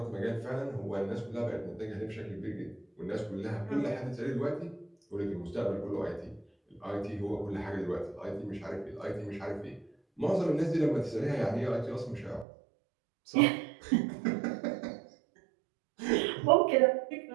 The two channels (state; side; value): drops out; left; at 12.5 s